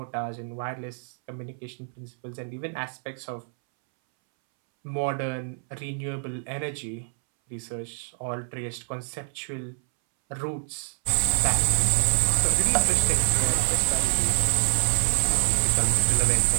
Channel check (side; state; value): left; silent; 61 dB below the other